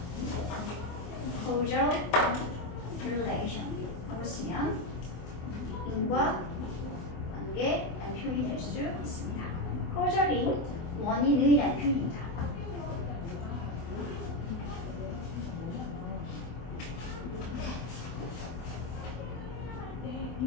causal relation. 하고 쓰면 인과 관계라는 표현이 될 수 있습니다. causal이 원인의라는 표현입니다.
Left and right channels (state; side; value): late; right; 24 ms